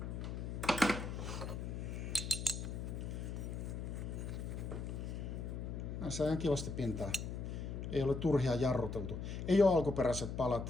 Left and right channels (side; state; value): left; noise; hum, 5 dB below the sound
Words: Näissä on kivasti pintaa. Ei ole turhia jarruteltu. Ei ole alkuperäiset